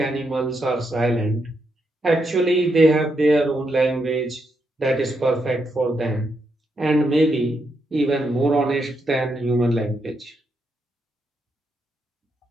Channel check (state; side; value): normal; both; correlation 0.81